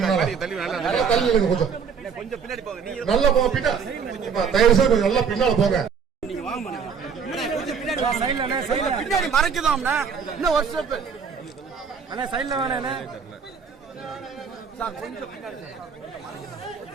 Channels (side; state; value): left; quieter; 6.4 dB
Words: கொஞ்சம் பின்னாடி போங்க. நல்லா போங்க பின்னாடி. தயவு செய்து கொஞ்சம் நல்லா பின்னால போங்க. நீங்க வாங்க பின்னாடி மறைக்குதோம்னா இன்னும் ஒரு ஸ்டெப் அண்ணா சைடுல வேணா சார் கொஞ்சம் பின்னாடி